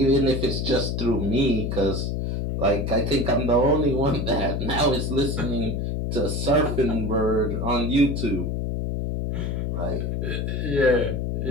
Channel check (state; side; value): noise; left; hum, 1 dB below the sound